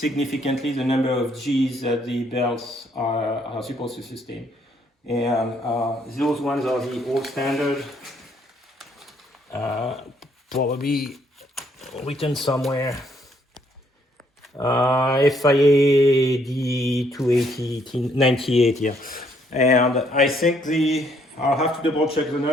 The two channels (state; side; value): normal; both; correlation 0.68